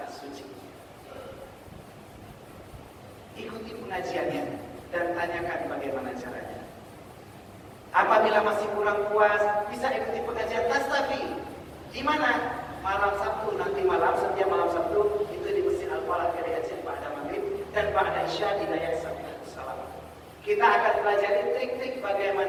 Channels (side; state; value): both; identical; correlation 1.00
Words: suci. Ikuti pengajiannya dan tanyakan bagaimana caranya. Apabila masih kurang puas, bisa ikuti pengajian Tastafi. Di mana? Malam Sabtu, nanti malam, setiap malam Sabtu itu di Masjid Al-Falah Keriajian Ba'da Maghrib dan Ba'da Isya di Naya Salam. Kita akan pelajari trik-trik